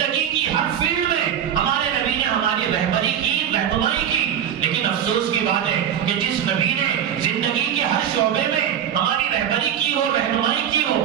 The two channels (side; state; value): left; quieter; 9.4 dB